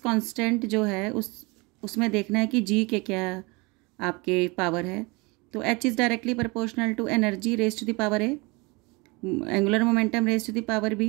जो है उसमें देखना है कि जी के क्या आपके पावर है। तो h is directly proportional to energy raise to the power a, angular momentum raise to the power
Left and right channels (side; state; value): left; quieter; 26.7 dB